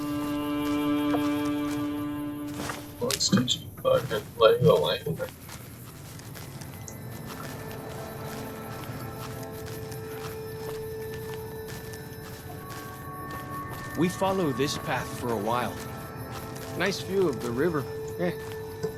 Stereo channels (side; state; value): both; identical; correlation 1.00